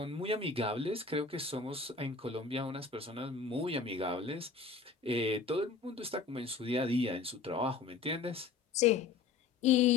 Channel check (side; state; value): right; quieter; 4.7 dB